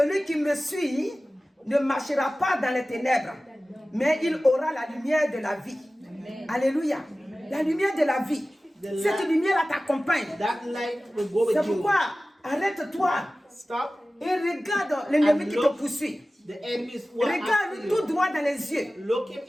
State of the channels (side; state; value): both; normal; correlation 0.97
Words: qui me suit ne marchera pas dans les ténèbres, mais il aura la lumière de la vie. Alléluia. La lumière de la vie. Cette lumière-là t'accompagne. That light will go with C'est you. pourquoi arrête-toi Stop et regarde l'ennemi and qui te look. poursuit. The enemies who are after Regarde tout you. droit dans les yeux. Look him